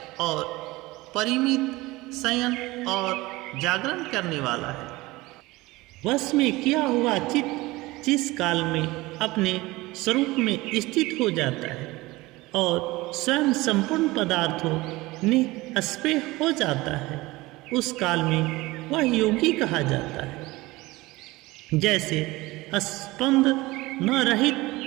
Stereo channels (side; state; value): left; quieter; 20.4 dB